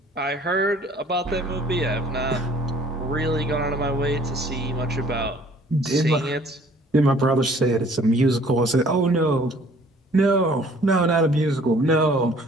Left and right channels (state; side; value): normal; both; correlation 0.55